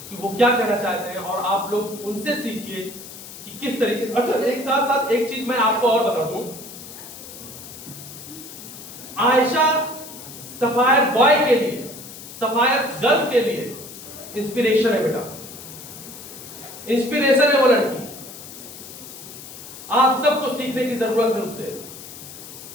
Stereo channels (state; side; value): noise; left; hiss, 14 dB below the sound